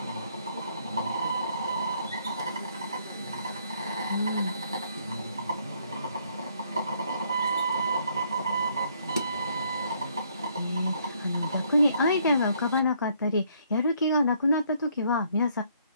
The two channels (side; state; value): both; inverted; correlation -0.67